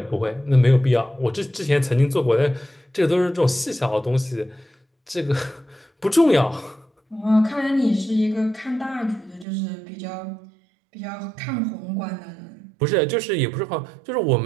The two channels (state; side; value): drops out; left; at 9.5 s